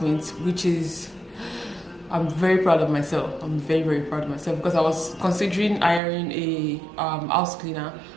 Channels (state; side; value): drops out; left; at 6.0 s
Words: which is, I'm very proud of myself. I'm very, very proud of myself because I was considering hiring a house cleaner,